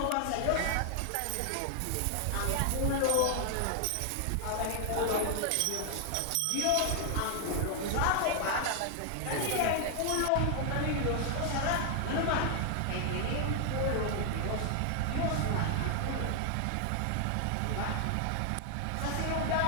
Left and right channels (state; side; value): different; both; correlation 0.00